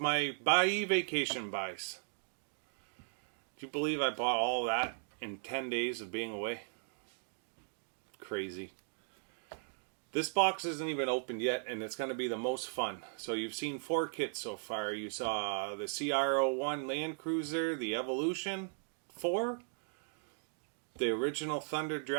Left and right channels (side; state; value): left; silent; digital silence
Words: buy vacation buys. Do you believe I bought all that in 10 days of being away? Crazy. This box isn't even opened yet, and it's going to be the most fun. So you've seen 4 kits so far. You saw the CR01 Land Cruiser, the Evolution 4, the original Thunder